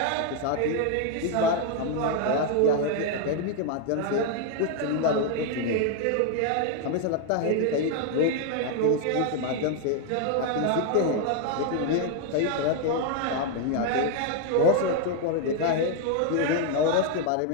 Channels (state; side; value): different; both; correlation 0.00